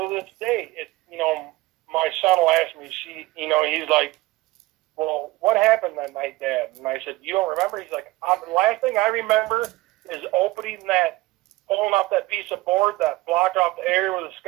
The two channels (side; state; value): left; quieter; 19.8 dB